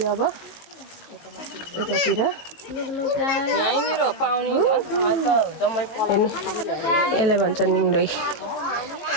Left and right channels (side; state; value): right; late; 18 ms